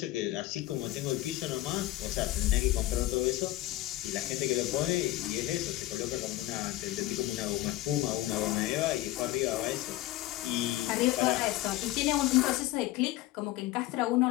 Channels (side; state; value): right; quieter; 16.5 dB